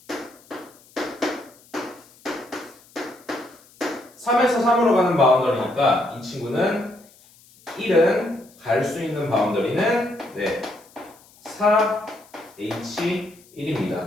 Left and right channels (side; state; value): left; noise; hiss, 27 dB below the sound